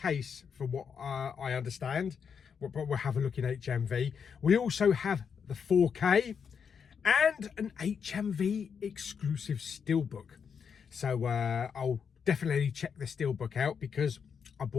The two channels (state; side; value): quieter; right; 6.7 dB